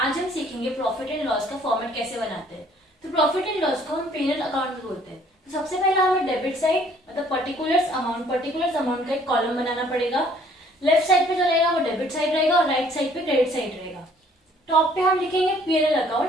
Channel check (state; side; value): normal; both; correlation 0.59